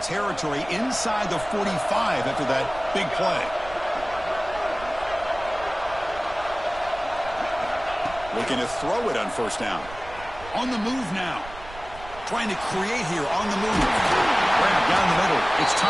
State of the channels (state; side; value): noise; right; rumble, 17 dB below the sound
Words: inside the 45 after that big play. Looking to throw it on first down. On the move now. Trying to create here on the move. Grab down the middle. It's